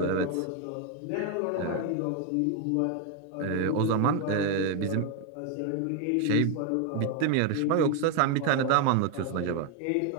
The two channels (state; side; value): different; both; correlation 0.01